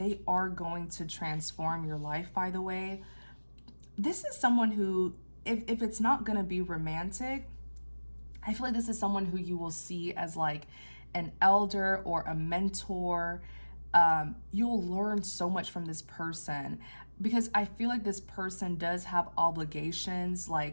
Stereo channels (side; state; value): both; inverted; correlation -1.00